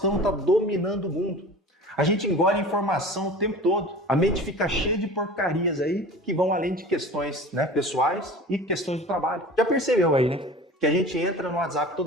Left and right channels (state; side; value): normal; both; correlation 0.38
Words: está dominando o mundo. A gente engole informação o tempo todo. A mente fica cheia de porcarias aí que vão além de questões, né, pessoais e questões do trabalho. Já percebeu aí, né? Que a gente entra no WhatsApp